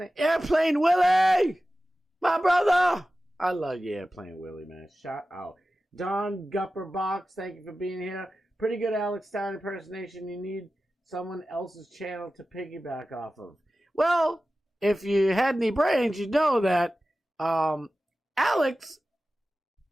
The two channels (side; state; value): both; normal; correlation 0.95